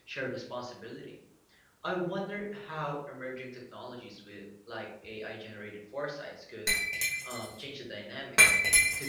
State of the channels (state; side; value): identical; both; correlation 1.00